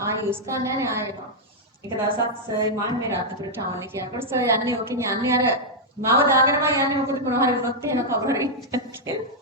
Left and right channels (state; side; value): normal; both; correlation -0.04